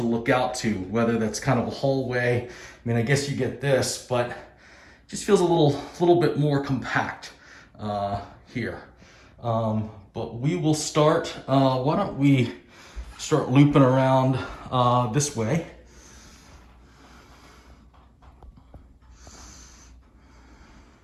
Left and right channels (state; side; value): identical; both; correlation 1.00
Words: look out to, whether that's kind of a hallway. I mean, I guess you get this, but it just feels a little bit more compact here. But we will start. Why don't we start looping around this way?